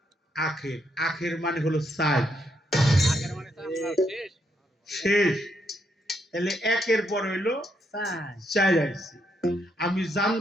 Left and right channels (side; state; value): both; normal; correlation 0.77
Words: আখের, আখের মানে হলো চার, শেষ। তাহলে একের পরে হইলো চার আইছে। আমি